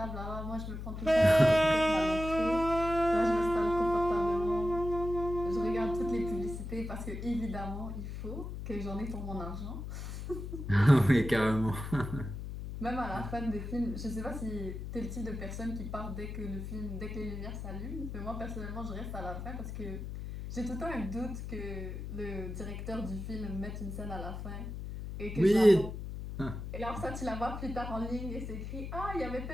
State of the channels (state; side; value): noise; left; hum, 7 dB below the sound